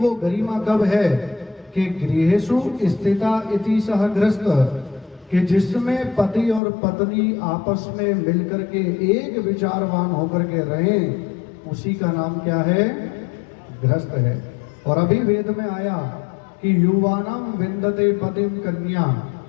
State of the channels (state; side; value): drops out; right; at 6.6 s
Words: गरिमा कब है कि गृहेषु स्थिता इति सह गृहस्थ, कि जिसमें पति और पत्नी आपस में मिलकर के एक विचारवान होकर के रहें, उसी का नाम क्या है? गृहस्थ है। और अभी वेद में आया कि युवानाम विंदते पतिम कन्या,